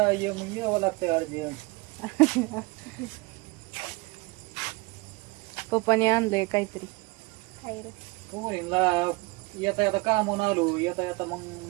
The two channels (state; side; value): quieter; left; 24.9 dB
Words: मग यावं लागतंय अर्जंट. पप्पाने आणलंय काहीतरी. पोरींला येता येता कामून आलो, येता येता मग